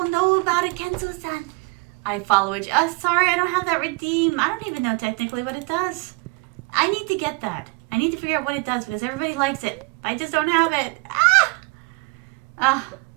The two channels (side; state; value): left; quieter; 28.5 dB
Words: know about it, Kenzo-san. I follow it. Sorry, I don't have that redeem. I don't even know technically what it does. I need to get that. I need to figure out what it does because everybody likes it. I just don't have it.